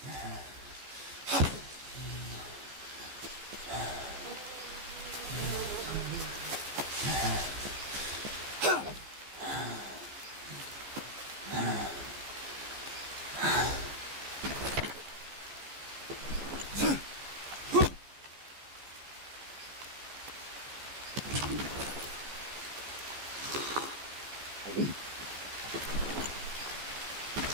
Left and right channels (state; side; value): late; left; 14 ms